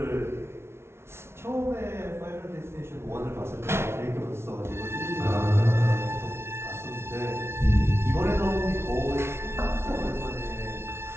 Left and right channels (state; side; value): late; left; 0.12 ms